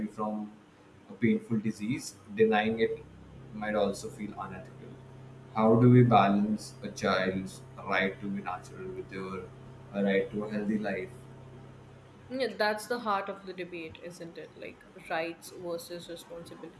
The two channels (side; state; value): both; identical; correlation 1.00